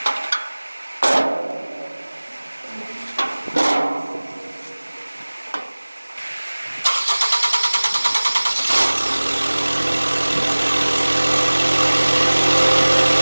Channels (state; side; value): inverted; both; correlation -1.00